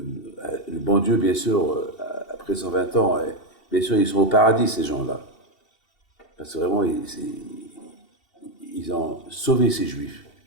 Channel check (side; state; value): right; late; 2.7 ms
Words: bon Dieu, bien sûr, après 120 ans, bien sûr, ils sont au paradis, ces gens-là. Parce que vraiment, ils ont sauvé ces Juifs.